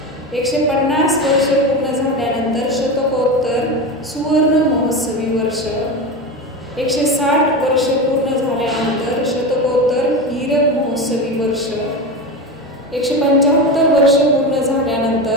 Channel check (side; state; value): both; normal; correlation 0.22